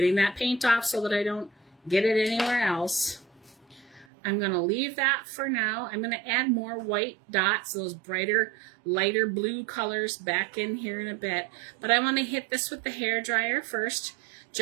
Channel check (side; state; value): left; drops out; at 4.0 s